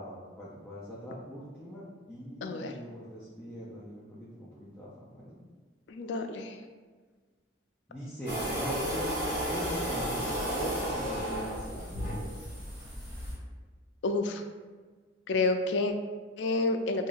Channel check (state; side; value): normal; both; correlation 0.13